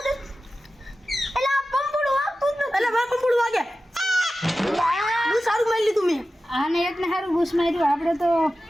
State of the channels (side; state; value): both; normal; correlation 0.94